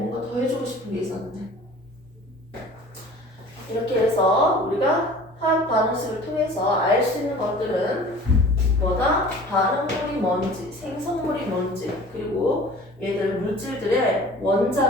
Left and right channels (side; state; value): both; normal; correlation 0.44